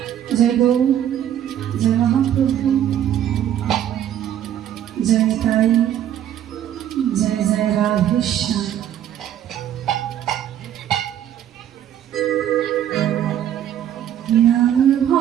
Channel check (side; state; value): left; quieter; 10.8 dB